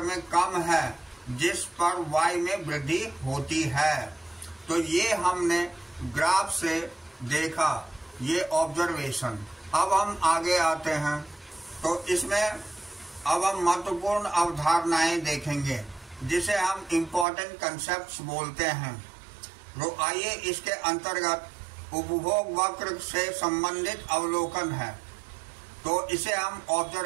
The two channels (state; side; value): drops out; left; at 17.2 s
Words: में कम है, जिस पर वाई में वृद्धि होती है। तो ये हमने ग्राफ से देखा, ये ऑब्जर्वेशन। अब हम आगे आते हैं, तो इसमें अब हम महत्वपूर्ण अवधारणाएं देखेंगे जिसे हम इम्पोर्टेंट कंसेप्ट्स बोलते हैं। तो आइए इसके अंतर्गत उपभोग वक्र से संबंधित अवलोकन है, तो इसे हम